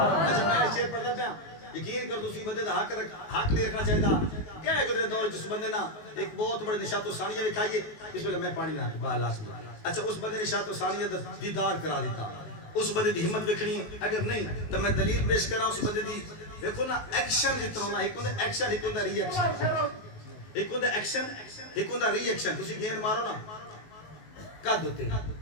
میں شعر پڑھتا پہ یقین کر دوسری بندے دا حق نہیں رکھنا چاہیے تھا کیا ہے گزرے دور جس بندے نا ایک بہت بڑے نشاط و ثانیہ میں کھائیے اس میں میں پانی نہ بالا سمجھا اچھا اس بندے نشاط و ثانیہ دیدار کرا دیتا اس بندے دی ہمت بکھنی اگر نہیں تو میں دلیل پیش کرا اس بندے دی دیکھو نا ایکشن جتنا ہونا ایک ہوندہ ایکشن ایک ہوندہ ری ایکشن ایک ہوندہ ایکشن ایک ہوندہ ری ایکشن تسی گیند مارو نا قد ہوتے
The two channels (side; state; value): right; late; 19 ms